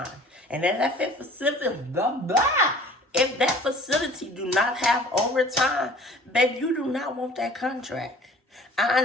And then if that facility do not have overtime, babe, you do not want that contract. I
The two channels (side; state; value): both; normal; correlation 0.48